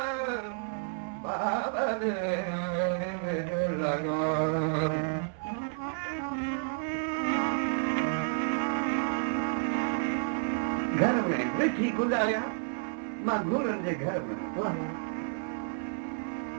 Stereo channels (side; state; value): left; silent; 57 dB below the other